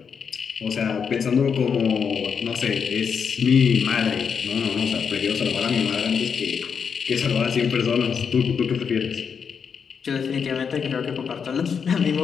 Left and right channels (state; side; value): quieter; right; 6.5 dB